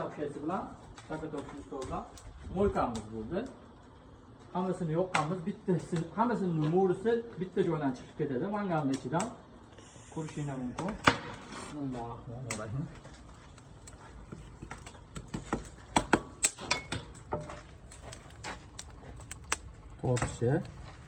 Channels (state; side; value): identical; both; correlation 1.00